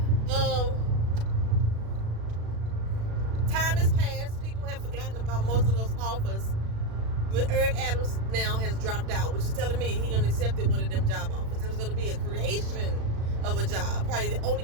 Time has passed. People have forgotten about most of those offers. But Eric Adams now has dropped out, which is telling me he done accepted one of them job offers. There was going to be a creation of a job, probably the only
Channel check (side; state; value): left; late; 36 ms